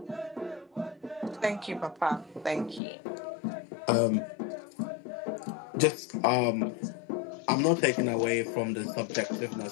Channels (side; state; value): right; drops out; at 2.8 s